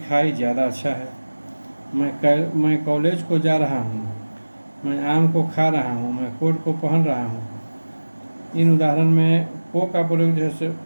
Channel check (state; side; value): inverted; both; correlation -1.00